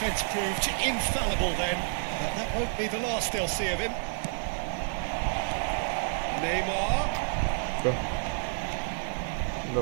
proved infallible then, but that won't be the last they'll see of him. Neymar.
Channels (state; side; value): silent; left; digital silence